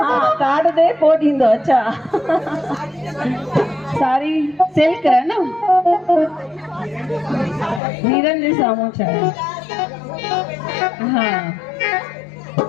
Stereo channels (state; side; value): drops out; right; at 7.8 s